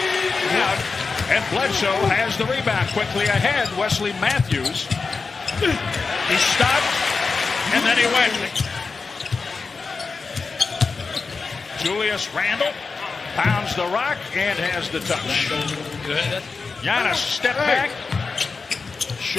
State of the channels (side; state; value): right; quieter; 4.5 dB